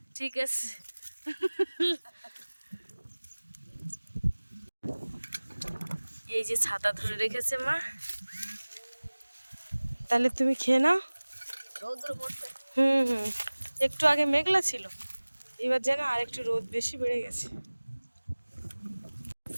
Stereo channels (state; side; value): inverted; both; correlation -1.00